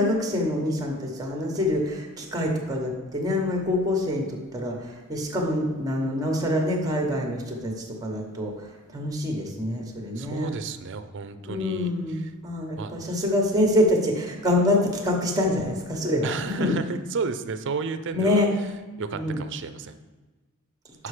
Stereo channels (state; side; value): normal; both; correlation 0.40